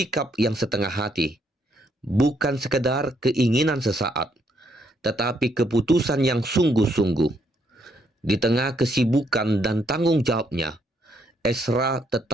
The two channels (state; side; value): normal; both; correlation 0.73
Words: yang setengah hati, bukan sekedar keinginan sesaat, tetapi keputusan yang sungguh-sungguh. Di tengah kesibukan dan tanggung jawabnya, Esra